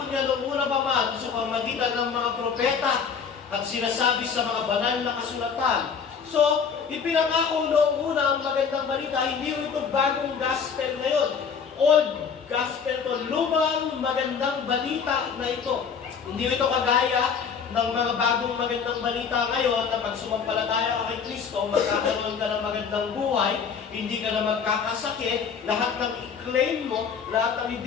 niya noong una pa man sa pamamagitan ng mga propeta at sinasabi sa mga banal na kasulatan. So, ipinangako noong una ang magandang balita, hindi ito bagong gospel ngayon. Old gospel to, lumang magandang balita na ito. Hindi ito kagaya ng mga bagong magandang balita ngayon na pag sumampalataya ka kay Kristo, magkakaroon ka ng magandang buhay, hindi ka na magkakasakit, lahat ng i-claim mo, lahat ng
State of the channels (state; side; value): quieter; right; 6.5 dB